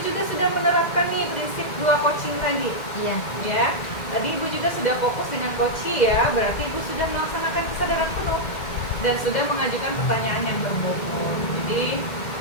juga sudah menerapkan nih prinsip 2 coaching tadi Iya. ya. Tadi Ibu juga sudah fokus dengan coaching ya, berarti Ibu sudah melaksanakan kesadaran penuh dan sudah mengajukan pertanyaan yang berbobot. Jadi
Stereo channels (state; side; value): late; right; 1.9 ms